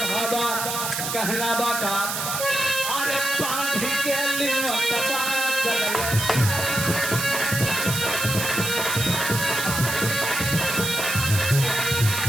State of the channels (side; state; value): right; noise; hiss, 3 dB below the sound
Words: बाबा कहना बा का अरे पानी के लिनो तबा चले